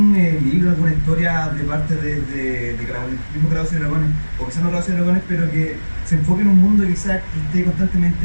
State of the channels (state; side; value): inverted; both; correlation -1.00